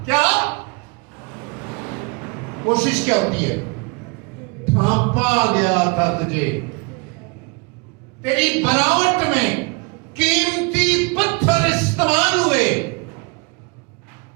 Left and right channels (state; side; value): quieter; left; 30.0 dB